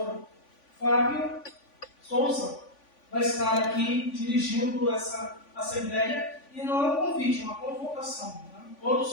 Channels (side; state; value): right; late; 3.5 ms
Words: Fábio Souza vai estar aqui dirigindo essa Assembleia, e não é um convite, é uma convocação.